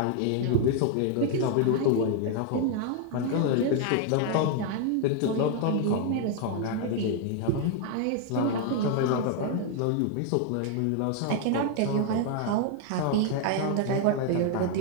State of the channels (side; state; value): both; different; correlation 0.00